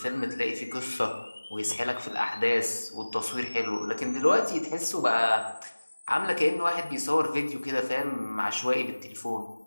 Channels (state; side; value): inverted; both; correlation -1.00